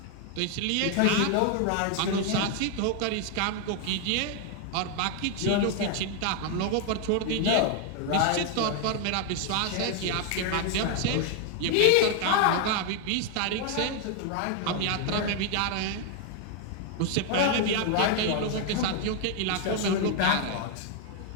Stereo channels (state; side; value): different; both; correlation 0.00